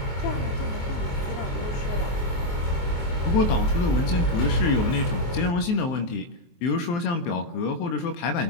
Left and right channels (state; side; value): late; right; 23 ms